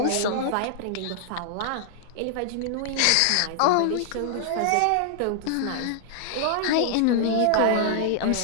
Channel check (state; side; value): different; both; correlation -0.01